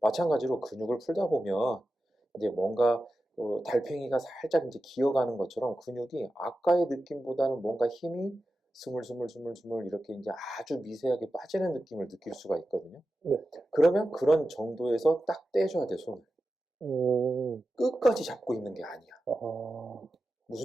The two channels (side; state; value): both; normal; correlation 0.92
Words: 근육을 풀다 보면 이제 뭔가 달팽이가 살짝 이제 기어가는 것처럼 근육이 아까의 느낌보다는 뭔가 힘이 스물스물스물스물 이렇게 이제 아주 미세하게 빠지는 느낌을 느낄 수가 있거든요. 네. 그러면 그런 정도에서 딱 떼줘야 돼, 손을. 끝까지 잡고 있는 게 아니야.